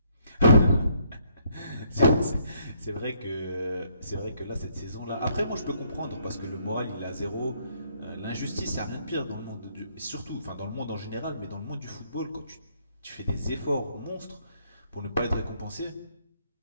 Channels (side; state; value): both; inverted; correlation -0.69